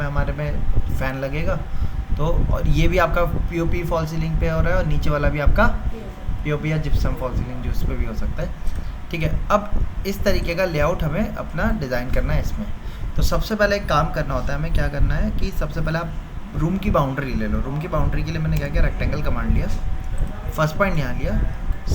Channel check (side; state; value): both; identical; correlation 1.00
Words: हमारे में फ़ैन लगेगा, तो और ये भी आपका पीओपी फॉल सीलिंग पे हो रहा है और नीचे वाला भी आपका पीओपी या जिप्सम फॉल सीलिंग जो उस पर भी हो सकता है, ठीक है। अब इस तरीके का लेआउट हमें अपना डिज़ाइन करना है इसमें। तो सबसे पहले एक काम करना होता है, हमें क्या करना है कि सबसे पहले आप रूम की बाउंड्री ले लो। रूम की बाउंड्री के लिए मैंने क्या किया, रेक्टेंगल कमांड लिया। फर्स्ट पॉइंट यहाँ लिया,